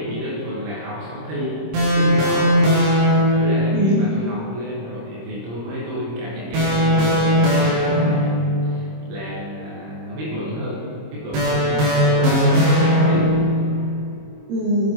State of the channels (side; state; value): left; late; 26 ms